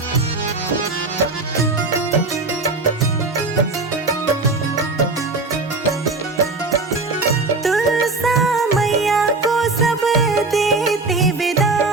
तुलसा मैया को सब देते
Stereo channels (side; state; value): left; quieter; 3.6 dB